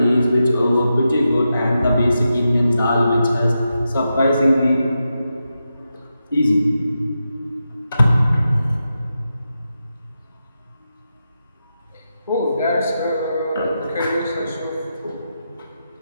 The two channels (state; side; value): inverted; both; correlation -0.88